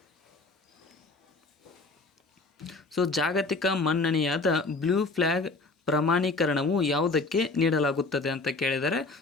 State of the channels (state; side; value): quieter; right; 3.6 dB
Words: ಜಾಗತಿಕ ಮನ್ನಣೆಯಾದ ಬ್ಲೂ ಫ್ಲ್ಯಾಗ್ ಪ್ರಮಾಣೀಕರಣವು ಯಾವುದಕ್ಕೆ ನೀಡಲಾಗುತ್ತದೆ ಅಂತ ಕೇಳಿದರೆ,